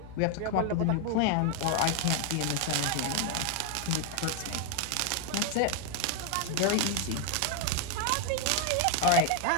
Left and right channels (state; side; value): different; both; correlation 0.00